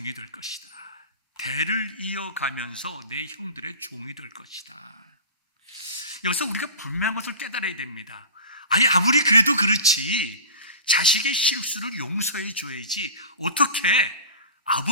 될 것이다. 대를 이어가면서 내 형들의 종이 될 것이다. 여기서 우리가 분명한 것을 깨달아야 됩니다. 아무리 그래도 그렇지 자식의 실수를 용서해 줘야지 어떻게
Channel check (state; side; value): inverted; both; correlation -0.34